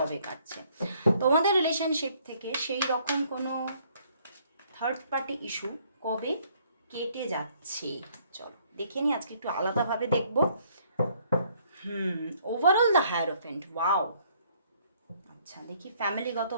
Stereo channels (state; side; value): inverted; both; correlation -0.64